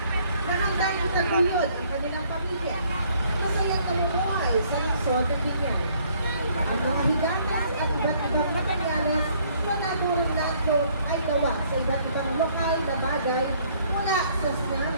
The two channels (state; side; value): inverted; both; correlation -0.63